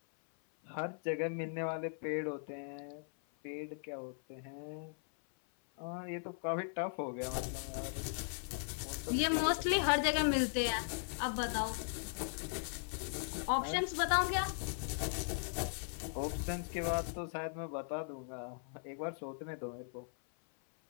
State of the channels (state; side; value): silent; right; 52 dB below the other